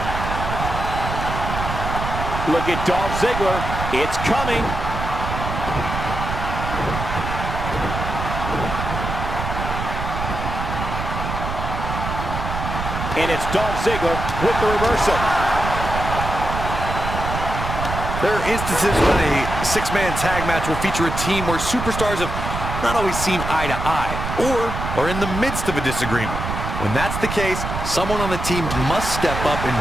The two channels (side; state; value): right; noise; rumble, 5 dB below the sound